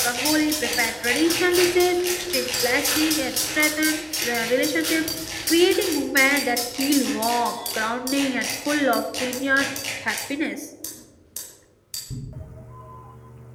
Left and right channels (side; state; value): both; identical; correlation 1.00